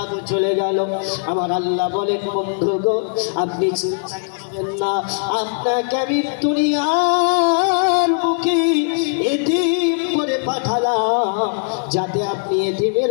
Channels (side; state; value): right; silent; 66 dB below the other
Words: চলে গেল। আমার আল্লাহ বলেন, বন্ধু গো আপনি চিন্তা করবেন না, আপনাকে আমি দুনিয়ার বুকে এতিম করে পাঠালাম যাতে আপনি এতিমের